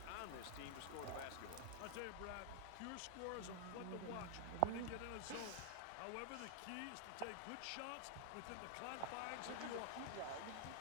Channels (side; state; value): both; different; correlation 0.00